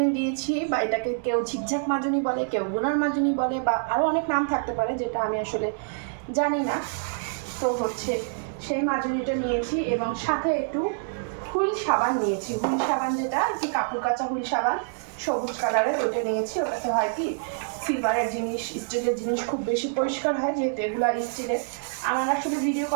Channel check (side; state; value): left; silent; 61 dB below the other